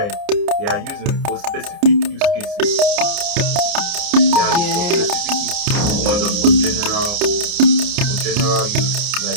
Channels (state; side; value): late; left; 29 ms